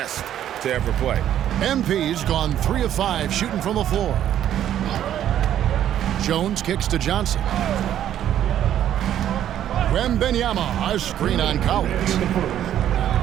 to ever play. MP's gone 3 of 5 shooting from the floor. Jones kicks to Johnson. Wembanyama, a screen on Collins.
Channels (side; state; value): left; quieter; 11.0 dB